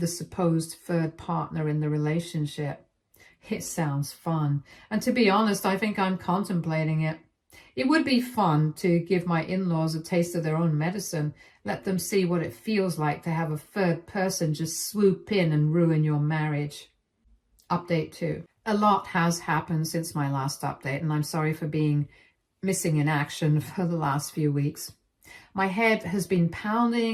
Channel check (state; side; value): identical; both; correlation 1.00